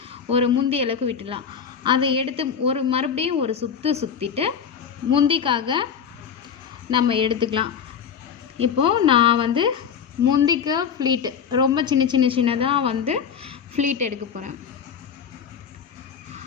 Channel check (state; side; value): quieter; right; 7.3 dB